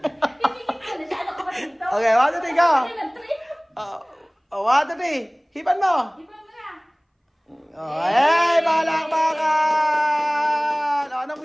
ko na siya. Ano ka ba dito? Okay, 1, 2, 3, go! Kasi ng trip. 1, 2, 3. Hipan mo! Iba mo na. Hey, balakbakan!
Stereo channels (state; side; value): identical; both; correlation 1.00